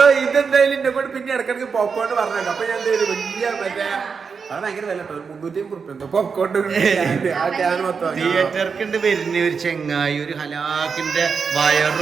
ഇതെന്തായാലും എന്നെ കൊണ്ട് പിന്നെ ഇടക്കിടക്ക് പോപ്കോൺ പറഞ്ഞേക്കാം. അപ്പൊ ഞാൻ വലിയ മറ്റേ അത് ഭയങ്കര വില 350 പോപ്കോൺ തിയേറ്റർക്ക് വരുന്ന ഒരു ചെങ്ങായി ഒരു ഹലാക്കിന്റെ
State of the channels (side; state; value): left; quieter; 5.6 dB